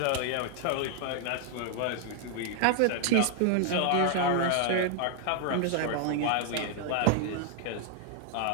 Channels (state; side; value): different; both; correlation 0.00